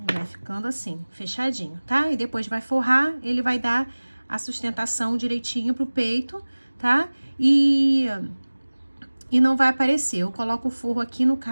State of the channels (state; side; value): inverted; both; correlation -1.00